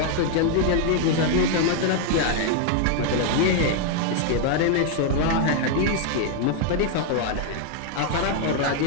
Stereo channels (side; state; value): both; different; correlation 0.00